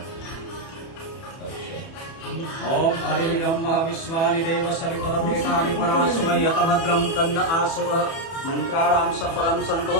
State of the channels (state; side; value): late; right; 30 ms